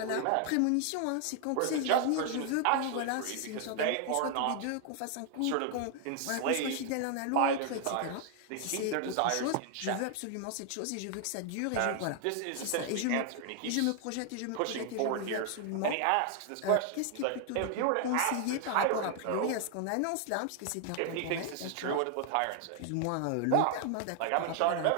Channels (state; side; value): different; both; correlation 0.00